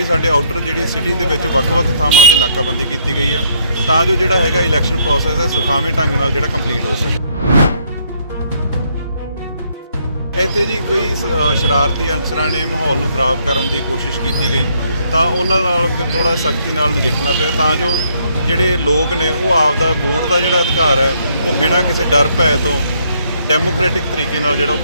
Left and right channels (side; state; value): both; inverted; correlation -0.68